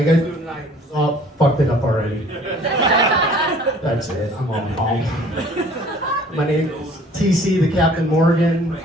guys doing tonight? Oh, fucked it up already. That's it. I'm on home. My name is TC, the Captain Morgan.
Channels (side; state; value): both; normal; correlation 0.53